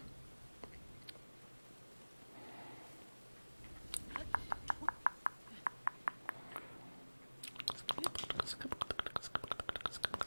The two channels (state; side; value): inverted; both; correlation -1.00